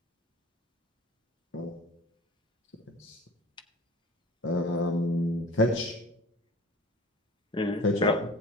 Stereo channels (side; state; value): both; normal; correlation 0.40